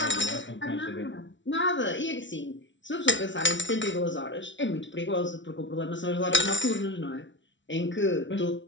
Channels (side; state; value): right; late; 0.55 ms